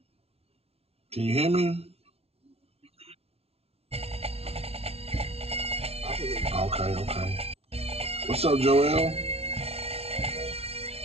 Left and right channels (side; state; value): left; late; 0.30 ms